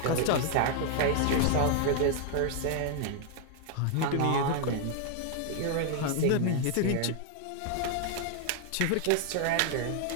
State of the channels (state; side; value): different; both; correlation 0.00